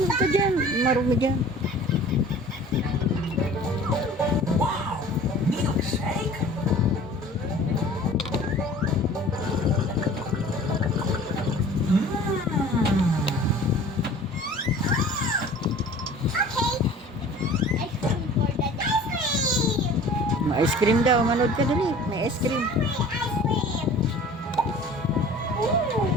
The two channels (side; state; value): both; normal; correlation 0.46